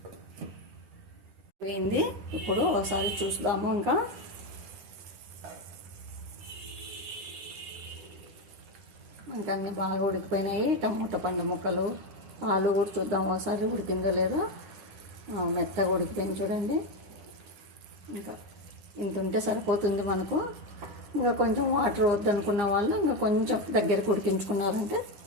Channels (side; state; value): left; late; 9.8 ms